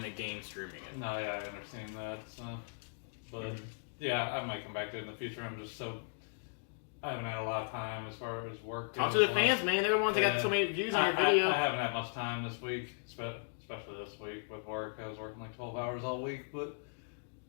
the game streaming it. No, yeah, I understand that. So, but yeah, I might come back to it in the future. I haven't had a lot of time as far as work. Talk to goes. the fans, man. They're the ones that got so many views on your video. I haven't had much time this week, especially this week with work. I was working like 12 hours all week, but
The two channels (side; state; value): right; silent; digital silence